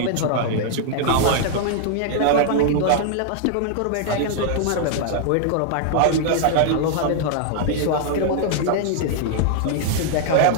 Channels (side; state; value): both; different; correlation -0.01